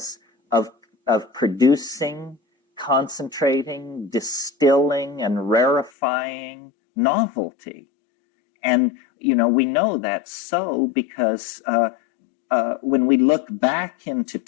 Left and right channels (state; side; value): drops out; right; at 5.9 s